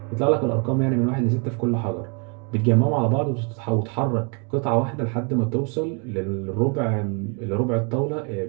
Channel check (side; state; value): left; quieter; 35.8 dB